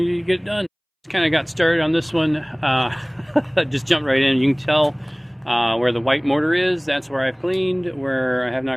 to get it done. Just kind of got started on this one. Just jumped right in. You can tell where the white mortar is. That's where I've cleaned. Where I have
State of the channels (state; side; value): identical; both; correlation 1.00